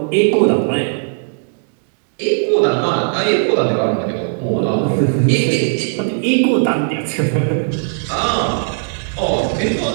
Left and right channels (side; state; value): left; silent; digital silence